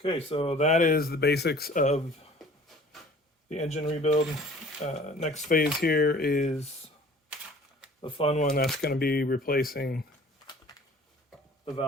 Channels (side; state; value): both; normal; correlation 0.49